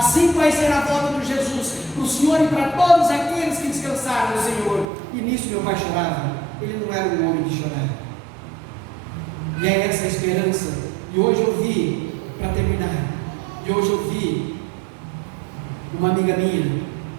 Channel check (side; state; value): left; drops out; at 4.9 s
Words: vai ser a volta de Jesus para o Senhor e para todos aqueles que descansaram no Senhor. E nisso meu pai chorava. Ele não era um homem de chorar. E é essa a esperança. E hoje eu vi, para terminar, uma amiga minha,